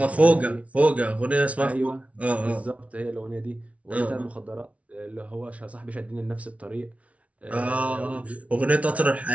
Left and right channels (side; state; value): left; late; 0.065 ms